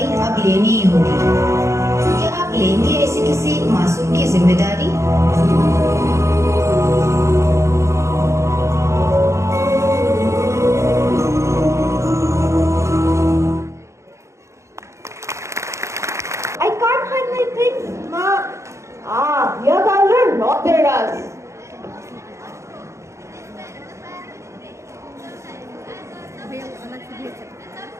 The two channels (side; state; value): left; late; 0.14 ms